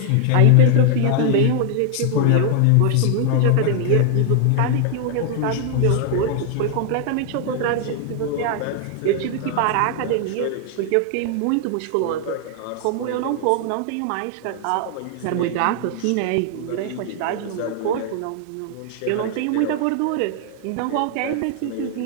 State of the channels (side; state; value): both; different; correlation 0.00